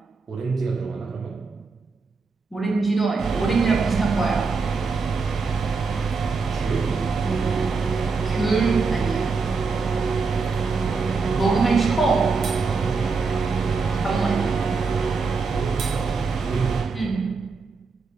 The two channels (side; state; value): left; quieter; 4.5 dB